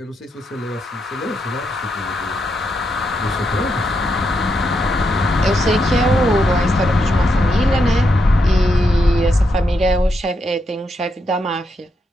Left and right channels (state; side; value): normal; both; correlation 0.82